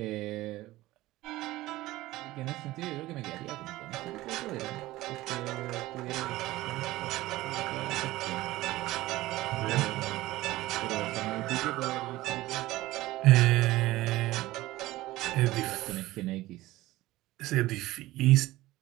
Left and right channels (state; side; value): quieter; left; 17.5 dB